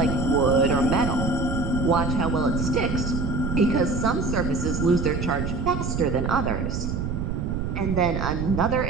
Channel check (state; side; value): noise; right; rumble, 2 dB below the sound